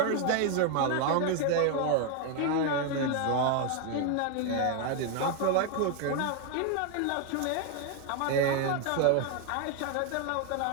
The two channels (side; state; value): both; different; correlation 0.01